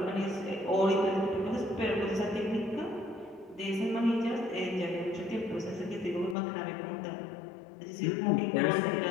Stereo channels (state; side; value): drops out; right; at 6.4 s